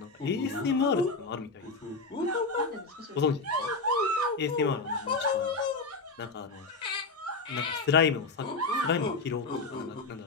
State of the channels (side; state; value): right; quieter; 3.8 dB